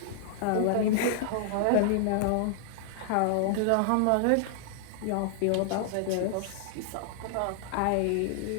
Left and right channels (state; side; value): different; both; correlation -0.01